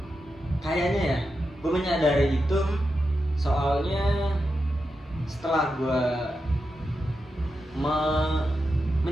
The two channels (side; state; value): both; normal; correlation 0.88